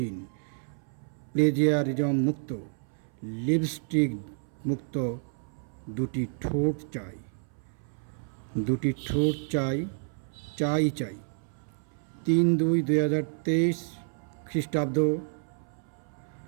প্লেজিয়ারিজম মুক্ত, লিপস্টিক মুক্ত দুটি ঠোঁট চাই। দুটি ঠোঁট চাই, চাই চাই। ৩/২/২০২৩ খ্রিস্টাব্দ,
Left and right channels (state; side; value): silent; left; 58 dB below the other